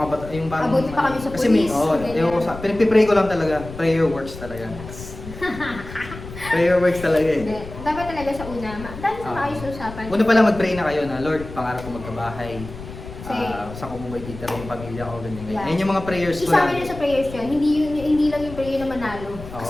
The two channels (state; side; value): noise; left; rumble, 13 dB below the sound